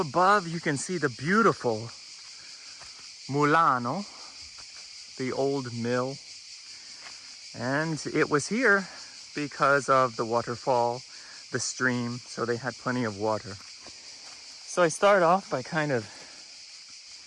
you can see the beautiful Mulano, the old mill. And it was here because of the waterfall, the stream, so they had plenty of water. So I start off by kind of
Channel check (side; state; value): both; identical; correlation 1.00